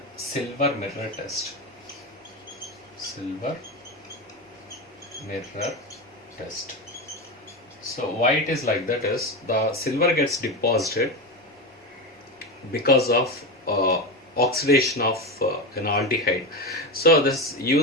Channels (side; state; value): both; normal; correlation 0.18